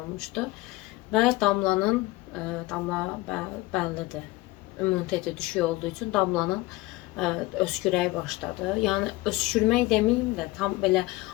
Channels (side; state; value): right; quieter; 20.3 dB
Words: Və Damlanın, Damla bəllidir, immuniteti düşük olduğu üçün Damlanın öskürəyi başladı. Yəni öskürmək deməyim də, tam belə